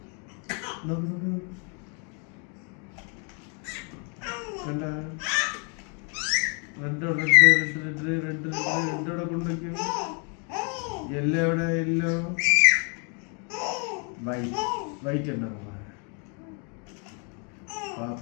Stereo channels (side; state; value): right; quieter; 37.5 dB